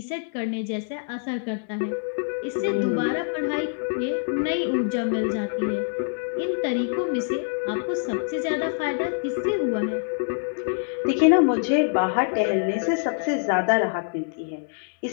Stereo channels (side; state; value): right; silent; 62 dB below the other